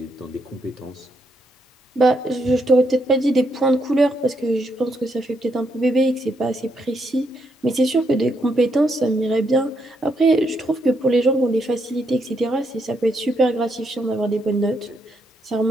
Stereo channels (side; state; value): both; normal; correlation 0.77